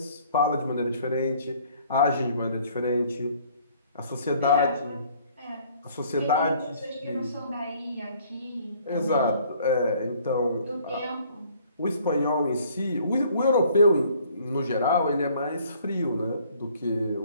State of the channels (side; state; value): both; inverted; correlation -0.58